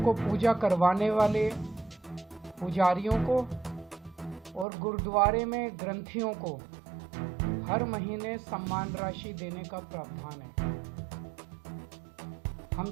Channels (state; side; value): drops out; left; at 4.7 s